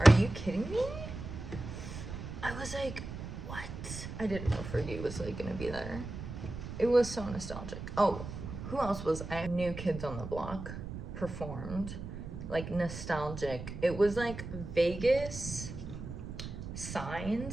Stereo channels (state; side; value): noise; right; rumble, 8 dB below the sound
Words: you kidding me? I was like, what? I didn't know Fergie was like gonna be there. It was so nostalgic. Oh, who else was I? New Kids on the Block performed. Like nostalgic. It was like Vegas